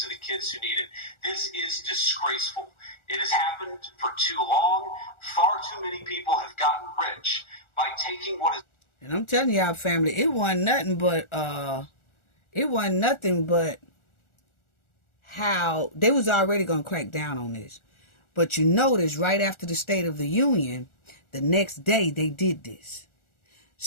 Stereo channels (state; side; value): late; right; 1.4 ms